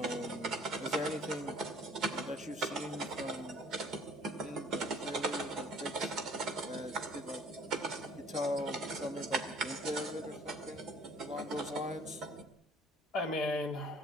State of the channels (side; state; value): both; normal; correlation 0.55